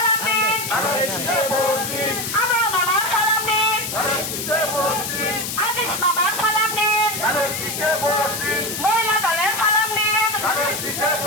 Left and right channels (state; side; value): noise; left; hiss, 5 dB below the sound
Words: নিন আমার মামার সালাম নিন আজিজ মামার সালাম নিন মহিলা দলের সালাম নিন